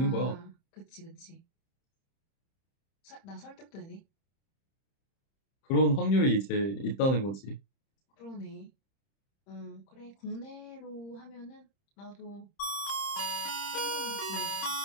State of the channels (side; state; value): right; late; 30 ms